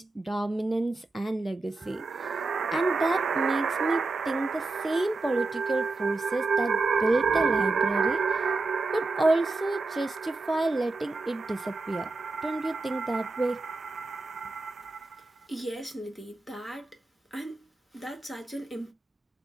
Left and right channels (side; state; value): left; quieter; 3.4 dB